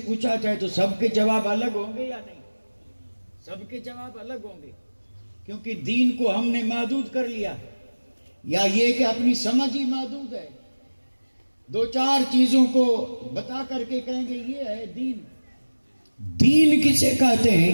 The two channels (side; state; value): both; inverted; correlation -1.00